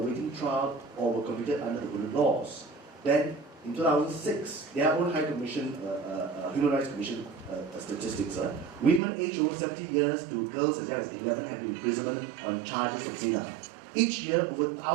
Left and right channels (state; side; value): drops out; left; at 9.0 s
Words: trial or were convicted under the hudud laws. Then, in 2006, their own High Commission, Human Rights Commission statistics, women aged over 70 years to girls as young as 11 have been imprisoned on charges of zina. Each year, over